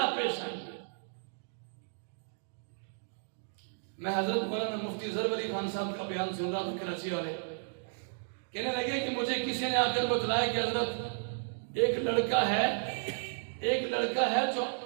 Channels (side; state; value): left; silent; digital silence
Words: پیش آئیں گے۔ میں حضرت مولانا مفتی ظفر علی خان صاحب کا بیان سن رہا تھا، کراچی والے کہنے لگے کہ مجھے کسی نے آ کر بتلایا کہ حضرت ایک لڑکا ہے جو